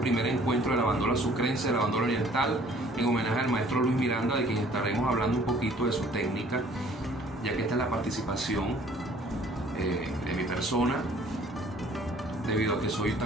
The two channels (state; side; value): normal; both; correlation 0.56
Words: encuentro de la bandola sucrense, de la bandola oriental, en homenaje al maestro Luis Miranda, de quien estaremos hablando un poquito de su técnica, ya que esta es la participación de mi persona, debido a que soy